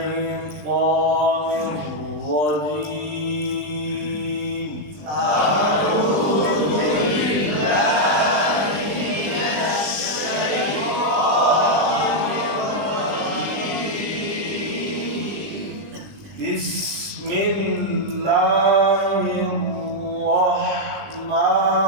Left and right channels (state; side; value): late; left; 20 ms